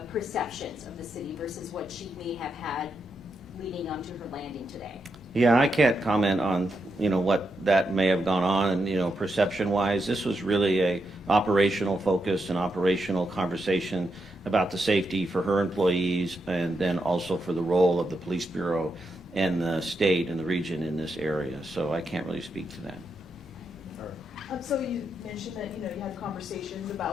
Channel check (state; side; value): normal; both; correlation 0.83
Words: perceptions of the city versus what she may have had leading onto her landing today? Yeah, I can't comment on, what that may have gone on and, perception-wise. This was really a operational focus and operational conversation about the safety for her employees and then also for the role of the police bureau and the state and the region in this area. So I can't really speak to that. So you mentioned that, you had conversations